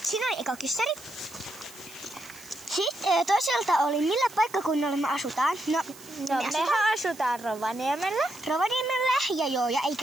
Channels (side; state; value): right; noise; hiss, 19 dB below the sound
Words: oli eka kyssäri. Sitten toiselta oli, millä paikkakunnalla me asutaan. Mehän asutaan Rovaniemellä. Ja ei